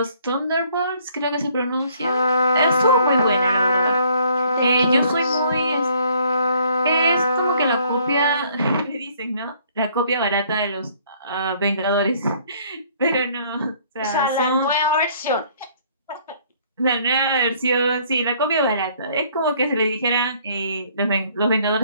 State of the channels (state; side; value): inverted; both; correlation -0.61